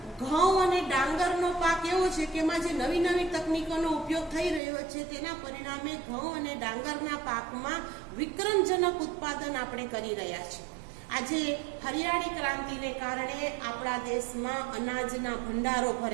ઘઉં અને ડાંગરનો પાક એવો છે કે એમાં જે નવી નવી તકનીકોનો ઉપયોગ થઈ રહ્યો છે, તેના પરિણામે ઘઉં અને ડાંગરના પાકમાં વિક્રમજનક ઉત્પાદન આપણે કરી રહ્યા છીએ. આજે હરિયાળી ક્રાંતિને કારણે આપણા દેશમાં અનાજના ભંડારો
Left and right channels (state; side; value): drops out; left; at 4.6 s